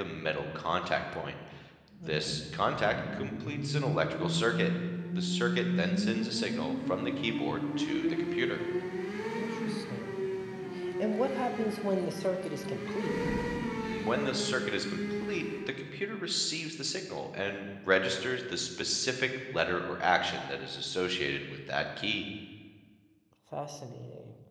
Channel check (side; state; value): both; identical; correlation 1.00